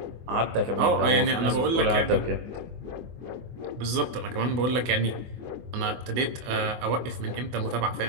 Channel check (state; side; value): late; left; 24 ms